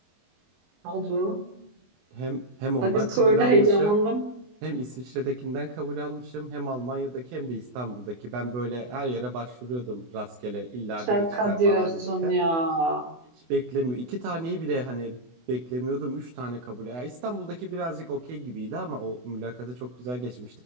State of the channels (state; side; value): late; left; 24 ms